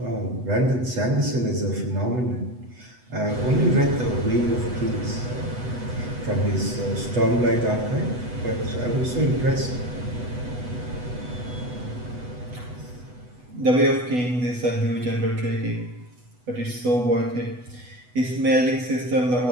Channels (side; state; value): left; late; 8.1 ms